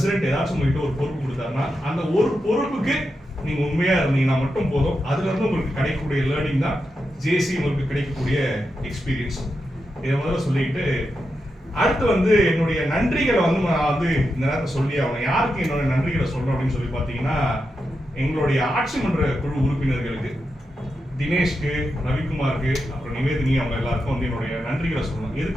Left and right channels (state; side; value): normal; both; correlation 0.87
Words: ஏதாச்சும் உங்ககிட்ட ஒரு பொறுப்பு கொடுத்தாருன்னா, அந்த ஒரு பொறுப்புக்கு நீங்க உண்மையா இருந்தீங்கன்னா மட்டும் போதும். அதுல இருந்து உங்களுக்கு கிடைக்கக்கூடிய லேர்னிங் தான் ஜேசி உங்களுக்கு கிடைக்கக்கூடிய எக்ஸ்பீரியன்ஸ். இதை முதல்ல சொல்லிட்டு அடுத்து வந்து என்னுடைய நன்றிகளை வந்து நான் வந்து இந்த நேரத்தை சொல்லி ஆகணும். யாருக்கு என்னோட நன்றிகளை சொல்றோம் அப்படின்னு சொல்லி பாத்தீங்கன்னா, எங்களுடைய ஆட்சி மன்ற குழு உறுப்பினர்களுக்கு, தினேஷ்க்கு, ரவிக்குமாருக்கு, அப்புறம் நிவேதினி, அவங்க எல்லாருக்கும் வந்து என்னுடைய நன்றிகளை சொல்லணும்.